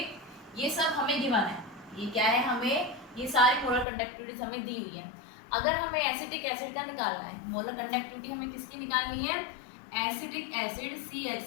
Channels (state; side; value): drops out; right; at 3.9 s